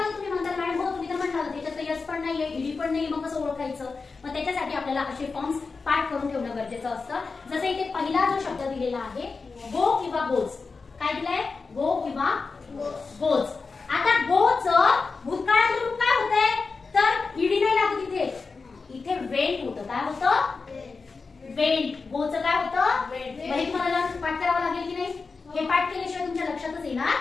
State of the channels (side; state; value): right; quieter; 4.4 dB